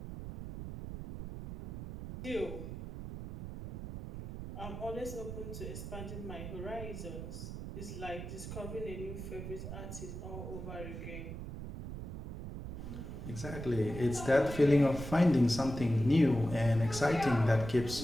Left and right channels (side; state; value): right; noise; rumble, 8 dB below the sound